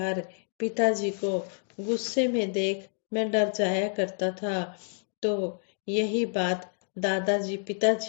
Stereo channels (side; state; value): right; silent; digital silence